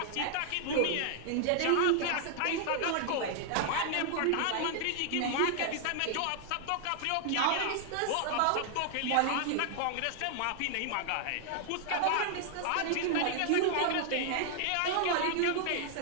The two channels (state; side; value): different; both; correlation 0.00